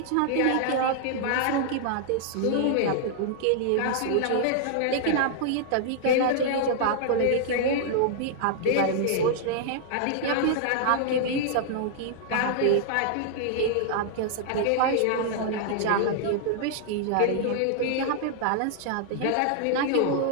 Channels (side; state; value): both; different; correlation -0.01